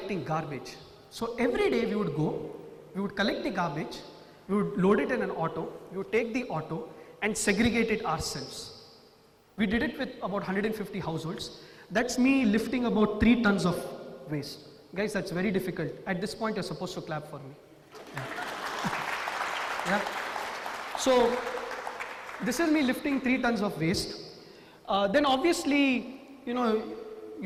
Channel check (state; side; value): identical; both; correlation 1.00